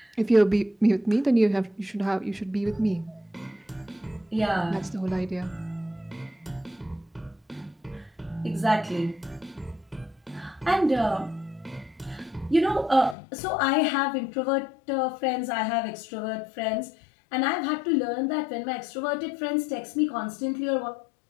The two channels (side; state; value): right; drops out; at 13.2 s